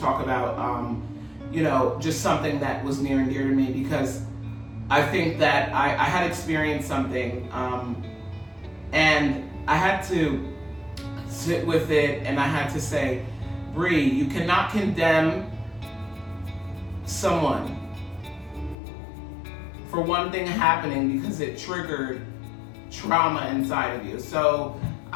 about, just something that was near and dear to me, because I think that I had experienced something, and I had to sit with it, and I had to say, Bree, you cannot condemn someone for one thing happening because it triggered trauma inside of you. So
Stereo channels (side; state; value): right; drops out; at 18.8 s